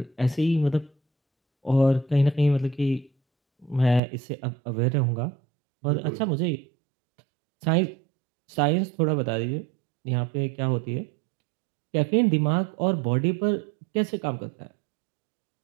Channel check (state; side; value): drops out; left; at 4.0 s